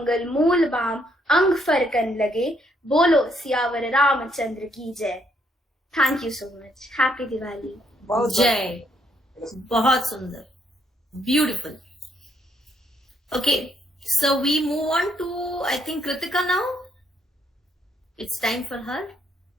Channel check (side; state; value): both; normal; correlation 0.72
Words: मूल बाम अंग फरकन लगे बोलो सियावर रामचंद्र की जय. Thank you so much. Happy Diwali. जय. बहुत सुंदर. Beautiful. Okay, so we move on to, I think, Kritika now. It's time for her.